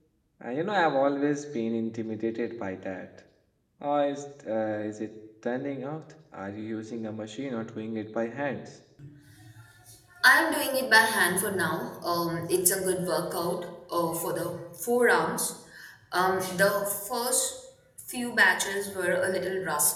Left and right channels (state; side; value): identical; both; correlation 1.00